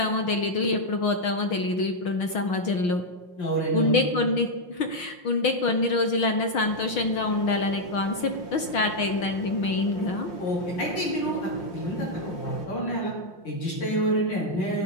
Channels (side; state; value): right; late; 6.4 ms